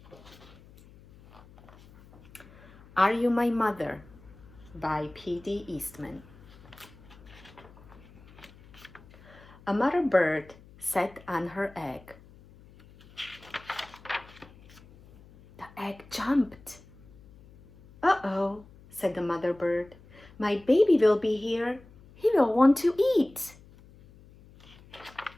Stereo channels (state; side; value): noise; left; hum, 23 dB below the sound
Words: Are You My Mother by P.D. Eastman. A mother bird sat on her egg. The egg jumped. Uh-oh, said the mother bird. My baby will be here. He will want to eat.